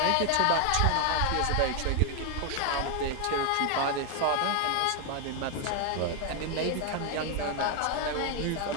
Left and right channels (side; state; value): both; different; correlation 0.01